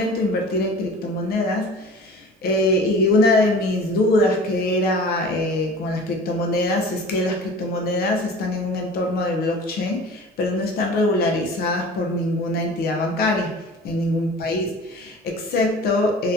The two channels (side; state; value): both; normal; correlation 0.41